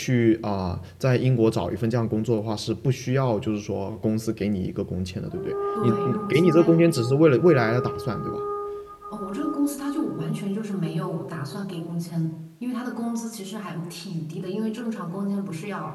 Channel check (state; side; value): identical; both; correlation 1.00